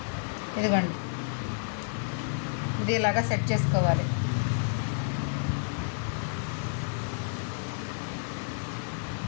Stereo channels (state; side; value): silent; right; 58 dB below the other